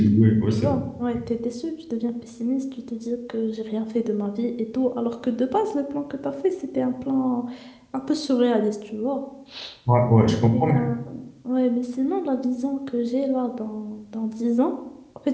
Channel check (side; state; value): both; identical; correlation 1.00